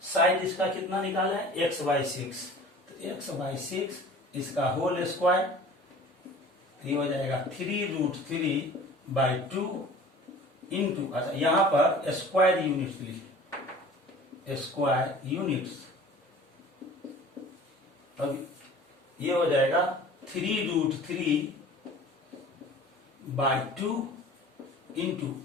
साइड इसका कितना निकाला है? x/6। तो x/6 इसका होल स्क्वायर, ये हो जाएगा 3√3/2 इंटू, अच्छा यहां पर स्क्वायर यूनिट्स लिखे, स्क्वायर यूनिट्स। अब ये हो जाएगा 3√3/2 into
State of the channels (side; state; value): both; normal; correlation 0.44